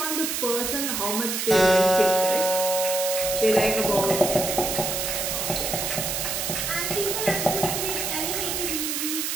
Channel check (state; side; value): noise; right; hiss, 1 dB below the sound